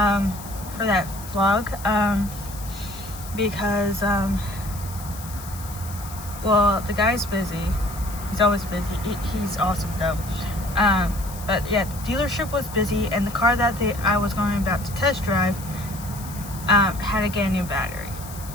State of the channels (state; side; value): noise; left; hiss, 15 dB below the sound